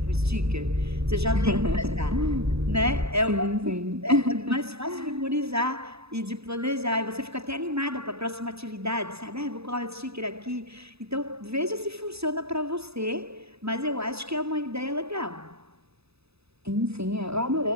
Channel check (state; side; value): late; left; 0.79 ms